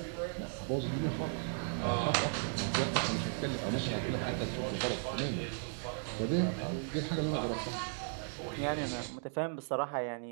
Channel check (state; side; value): silent; left; 54 dB below the other